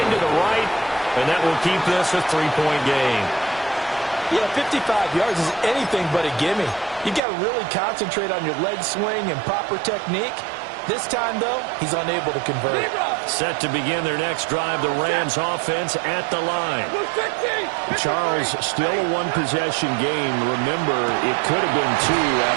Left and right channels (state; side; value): drops out; left; at 7.2 s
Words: to the right, and that will keep this a 3-point game. Yeah, 55 yards is anything but a gimme. You got to really concentrate on your leg swing and proper technique. This time, though, he's unable to convert. Set to begin their next drive, the Rams offense at the line. Charles, still a one-possession game. Remember, it could have been two